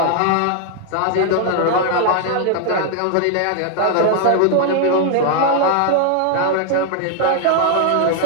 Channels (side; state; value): both; different; correlation 0.00